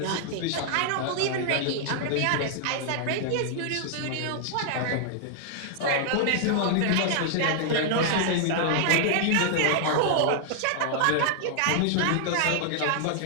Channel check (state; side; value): different; both; correlation 0.00